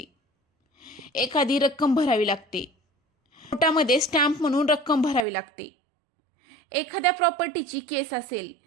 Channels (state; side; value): drops out; left; at 5.2 s